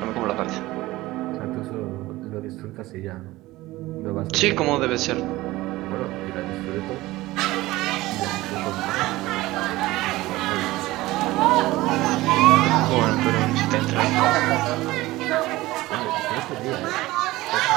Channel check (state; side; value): quieter; left; 18.4 dB